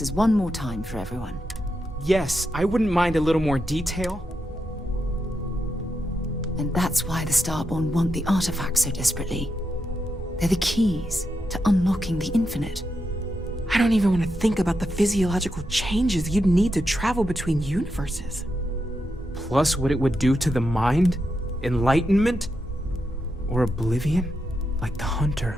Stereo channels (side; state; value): both; normal; correlation 0.85